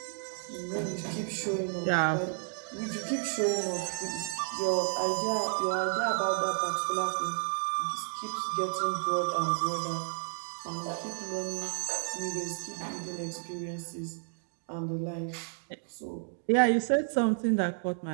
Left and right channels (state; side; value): silent; left; digital silence